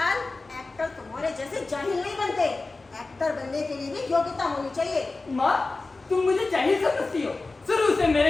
एक्टर तुम्हारे जैसे जाहिल नहीं बनते, एक्टर बनने के लिए भी योग्यता होनी चाहिए। माँ तुम मुझे जाहिल समझती हो, शुरू से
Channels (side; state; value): right; quieter; 3.5 dB